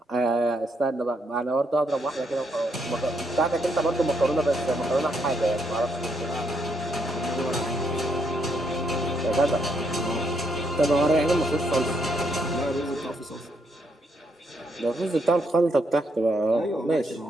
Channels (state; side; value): normal; both; correlation 0.76